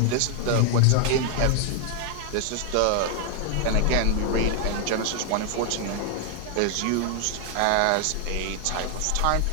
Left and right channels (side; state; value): both; different; correlation 0.00